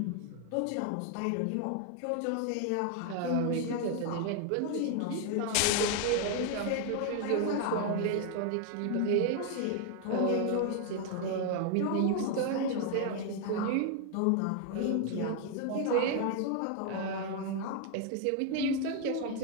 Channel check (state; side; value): different; both; correlation 0.00